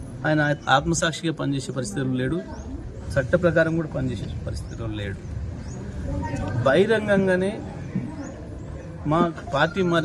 ఆయన ఆత్మసాక్షిగా పనిచేసే పరిస్థితులు లేడు, చట్ట ప్రకారం కూడా పనిచేసే పరిస్థితులు లేడు. బహిరంగంగానే మా పార్టీ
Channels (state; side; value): identical; both; correlation 1.00